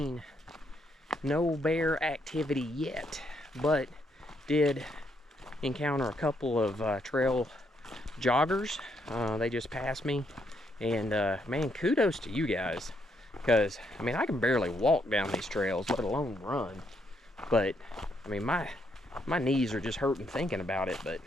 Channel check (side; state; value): both; normal; correlation 0.75